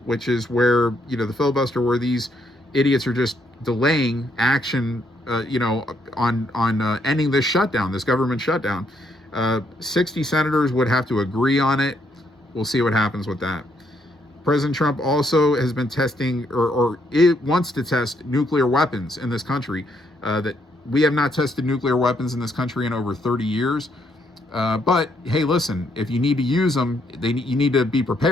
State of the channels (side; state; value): both; normal; correlation 0.73